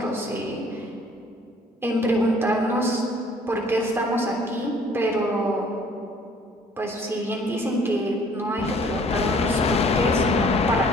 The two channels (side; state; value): both; normal; correlation 0.57